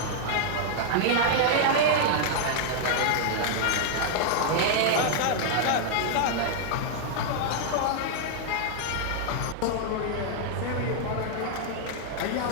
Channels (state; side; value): different; both; correlation -0.01